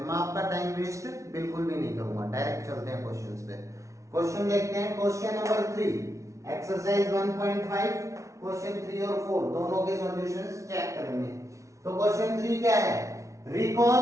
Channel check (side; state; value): left; late; 0.15 ms